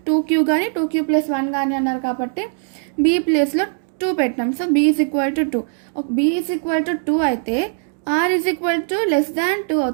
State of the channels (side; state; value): left; silent; digital silence